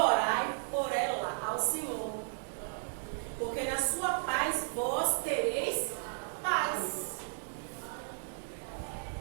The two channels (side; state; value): left; silent; digital silence